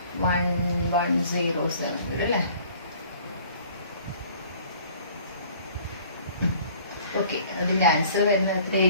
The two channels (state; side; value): inverted; both; correlation -0.53